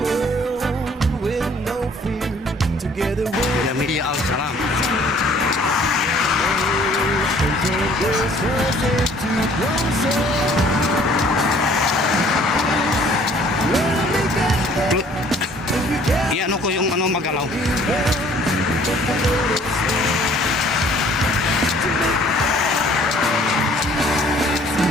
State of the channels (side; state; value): both; normal; correlation 0.57